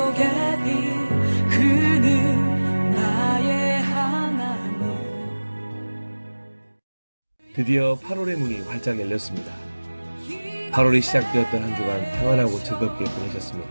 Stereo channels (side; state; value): both; inverted; correlation -1.00